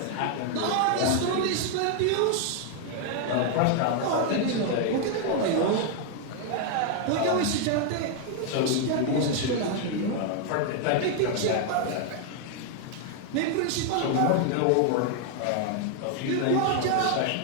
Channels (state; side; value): different; both; correlation 0.00